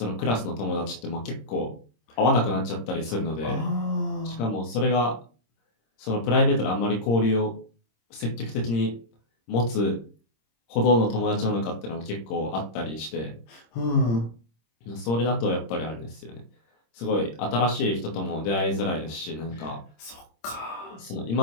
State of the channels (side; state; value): right; late; 26 ms